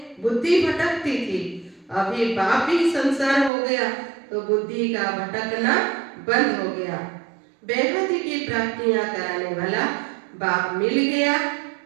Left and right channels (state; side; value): drops out; left; at 3.5 s